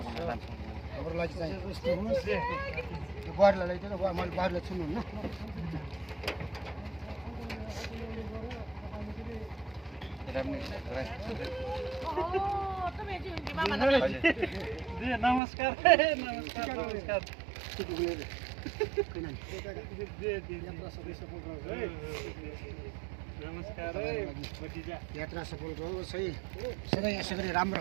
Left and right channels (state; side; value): drops out; left; at 15.4 s